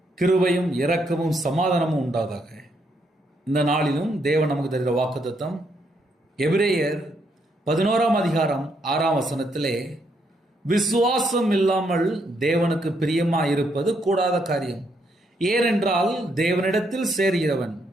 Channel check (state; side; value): normal; both; correlation 0.75